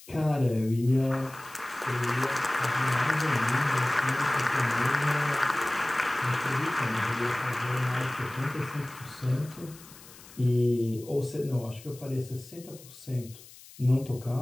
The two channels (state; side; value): noise; left; hiss, 20 dB below the sound